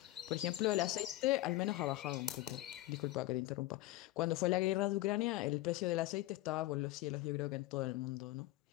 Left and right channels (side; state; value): right; quieter; 17.2 dB